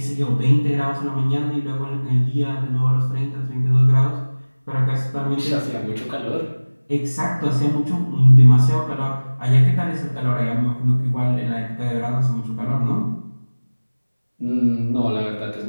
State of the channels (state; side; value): inverted; both; correlation -1.00